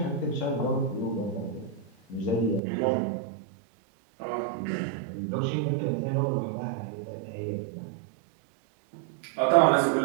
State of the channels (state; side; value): drops out; left; at 2.6 s